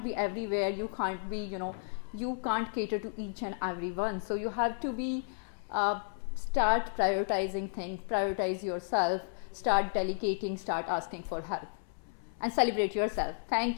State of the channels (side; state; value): right; silent; 56 dB below the other